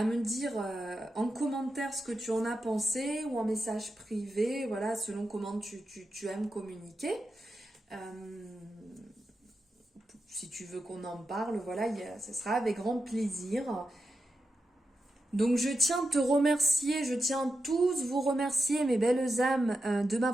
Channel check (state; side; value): normal; both; correlation 0.88